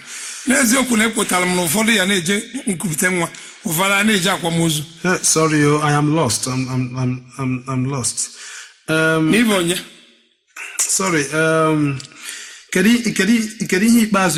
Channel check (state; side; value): identical; both; correlation 1.00